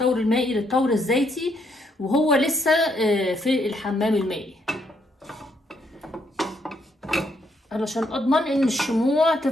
المائي للتور الزيتي وهو لسه في الحمام المائي، علشان اضمن ان الشموع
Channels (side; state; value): both; normal; correlation 0.74